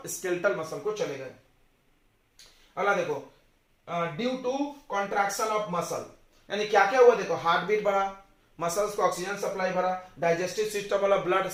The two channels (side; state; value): both; identical; correlation 1.00